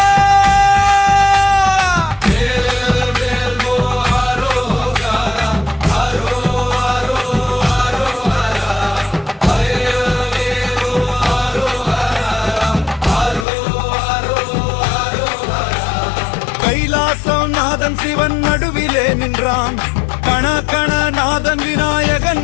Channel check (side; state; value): right; drops out; at 13.5 s